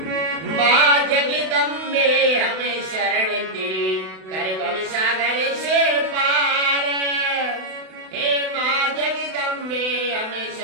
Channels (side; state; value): left; late; 32 ms